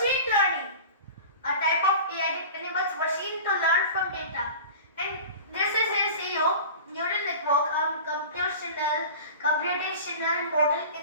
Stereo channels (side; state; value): both; inverted; correlation -0.36